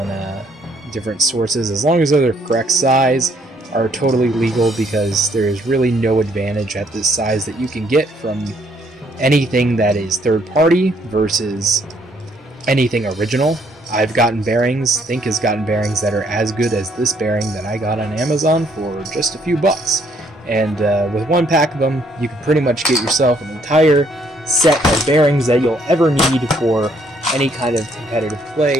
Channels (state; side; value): normal; both; correlation 0.67